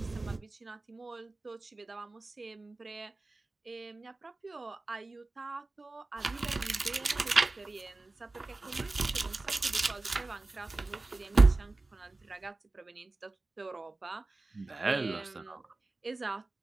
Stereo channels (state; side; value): quieter; left; 3.2 dB